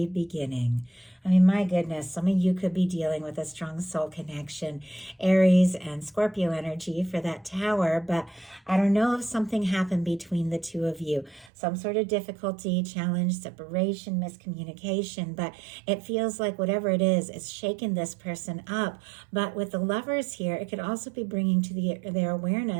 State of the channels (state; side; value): drops out; left; at 11.5 s